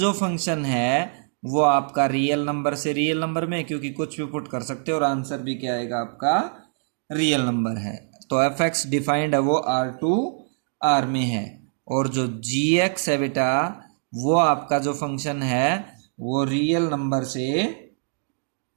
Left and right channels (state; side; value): silent; left; digital silence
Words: फंक्शन है वो आपका रियल नंबर से रियल नंबर में, क्योंकि कुछ भी पुट कर सकते हो और आंसर भी क्या आएगा आपका रियल नंबर है, तो एफ एक्स डिफाइंड है वो R2R में है, और जो gx है बेटा वो आपका जो फंक्शन है वो रियल नंबर से